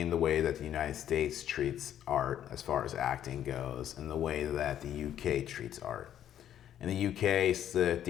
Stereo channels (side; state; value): right; quieter; 10.7 dB